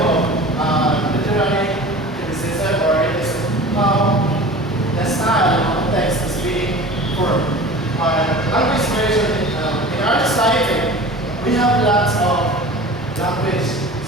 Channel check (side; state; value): both; normal; correlation 0.39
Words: literary criticism, or it is how the style of text is being formed. Language tradition in our society, we have lots of language.